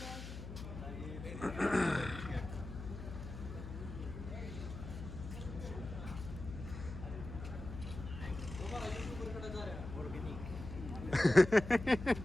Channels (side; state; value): left; noise; hum, 9 dB below the sound